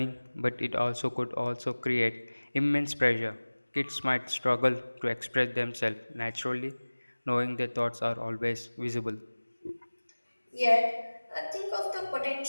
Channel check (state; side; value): inverted; both; correlation -1.00